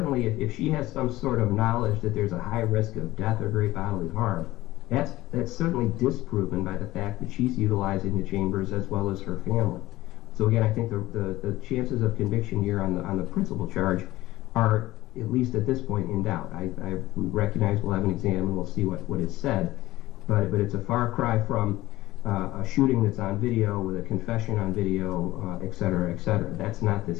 if she has some sort of knowledge that there's a high risk of death or great bodily harm, that's certainly disproven by the fact that she's utilizing the chambers as well as her family. So again, I think the chances of conviction here on the principal charge are, at least at this point, in doubt. I recognize we'll have an exam and we'll see what is said, but it's a far cry from a shooting that's on video with a confession on video, et cetera, et cetera. That's not this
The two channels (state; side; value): quieter; right; 17.2 dB